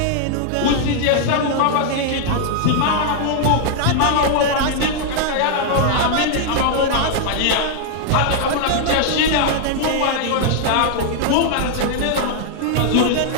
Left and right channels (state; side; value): different; both; correlation -0.01